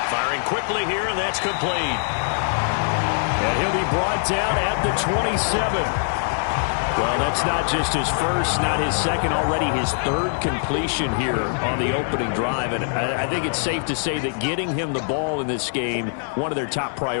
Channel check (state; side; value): silent; right; digital silence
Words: Firing quickly here, and that's complete. And he'll be brought down at the 27. Well, that's not just his first, not his second, already his 3rd completion here on the opening drive. And I think it's safe to say that getting him the ball in this game, one of their top